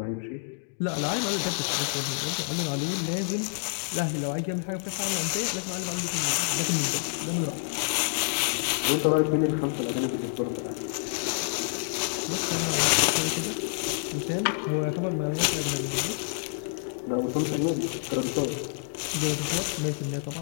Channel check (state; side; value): silent; right; digital silence